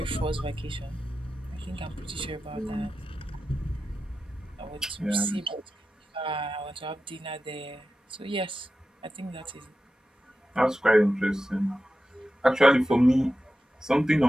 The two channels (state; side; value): normal; both; correlation 0.92